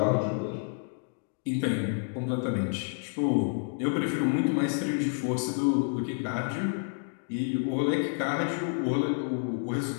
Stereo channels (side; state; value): right; silent; digital silence